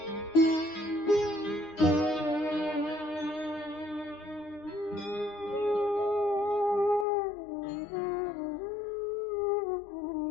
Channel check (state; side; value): drops out; right; at 7.1 s